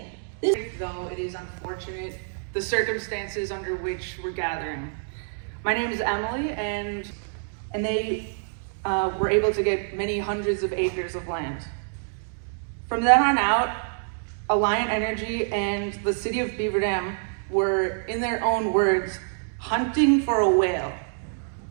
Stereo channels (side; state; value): left; silent; digital silence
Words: Though it is unfortunate, the circumstances under which we're gathering. My name is Emily, and they were able to get many hundreds of acres of land. From then on out, Alliant Energy and the city of Beaver Dam were, in their own words, hunting for a whale.